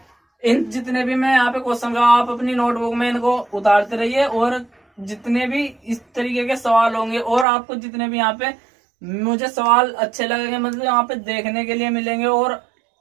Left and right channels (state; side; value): drops out; left; at 7.5 s